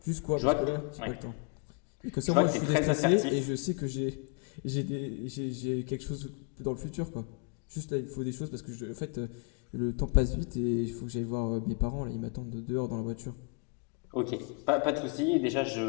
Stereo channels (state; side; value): quieter; right; 35.6 dB